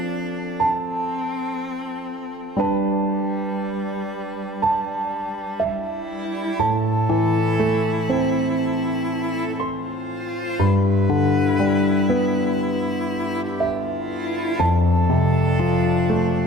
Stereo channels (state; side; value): normal; both; correlation 0.52